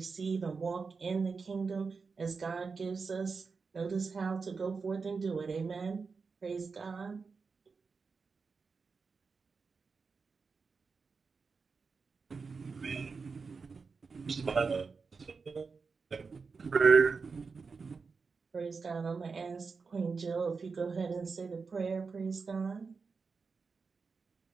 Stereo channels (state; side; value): quieter; left; 4.9 dB